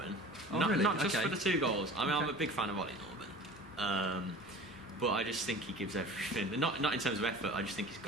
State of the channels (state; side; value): normal; both; correlation 0.40